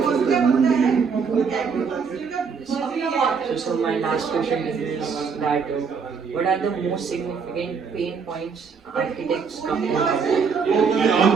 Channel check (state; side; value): quieter; left; 5.7 dB